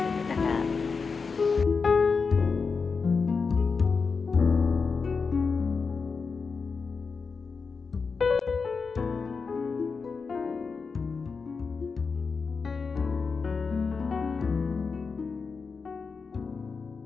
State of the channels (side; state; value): right; quieter; 5.0 dB